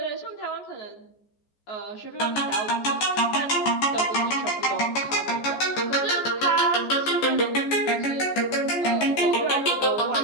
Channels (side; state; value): right; late; 14 ms